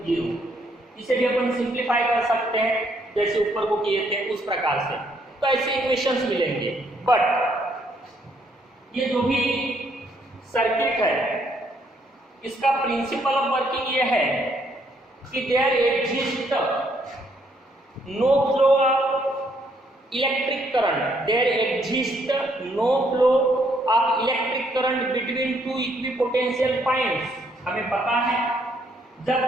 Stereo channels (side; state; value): both; normal; correlation 0.70